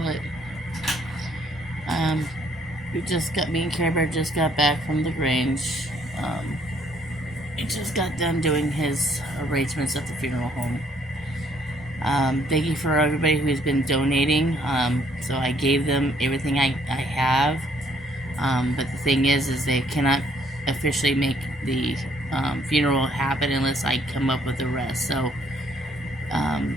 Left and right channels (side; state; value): both; normal; correlation 0.66